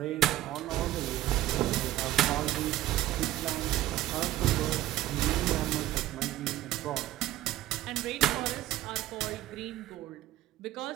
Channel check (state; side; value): quieter; left; 14.5 dB